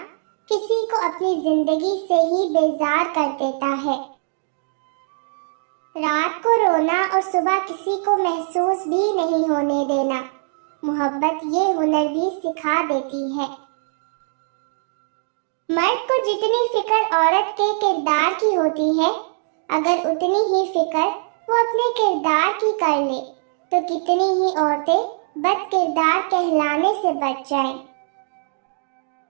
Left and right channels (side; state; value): left; silent; digital silence